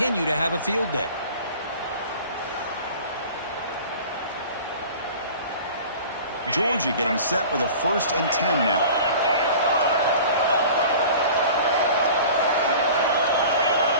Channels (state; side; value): inverted; both; correlation -0.41